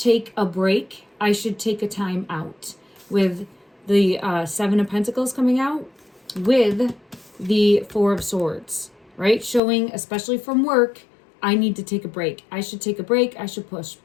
a break. I should take a time out. With the Seven of Pentacles coming out, with the Four of Swords, right? Showing, especially from work, I need to take a break. I should take a break. I should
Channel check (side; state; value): right; drops out; at 9.6 s